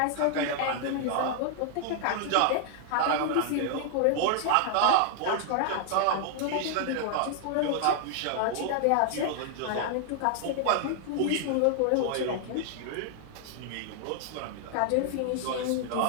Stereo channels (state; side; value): different; both; correlation 0.00